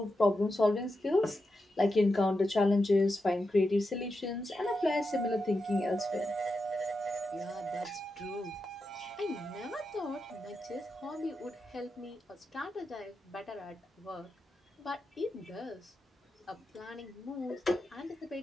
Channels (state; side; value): normal; both; correlation 0.88